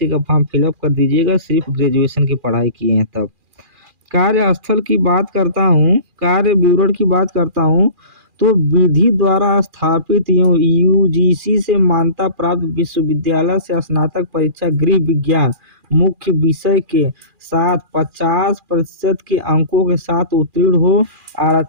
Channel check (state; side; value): late; left; 2.4 ms